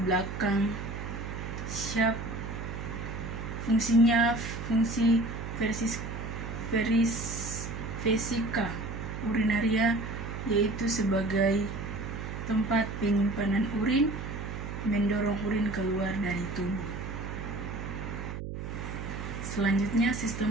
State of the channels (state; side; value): noise; right; hum, 6 dB below the sound